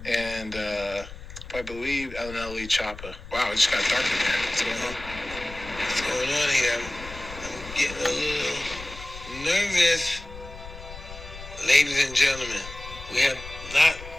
and I believe LNLE Choppa. Wow, it just got dark in there. What's going on? What's going on here? I'm getting a little nervous. Ladies and gentlemen, we have not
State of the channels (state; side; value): noise; left; rumble, 14 dB below the sound